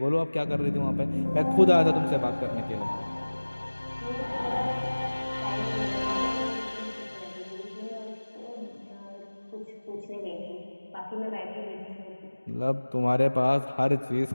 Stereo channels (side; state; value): both; inverted; correlation -1.00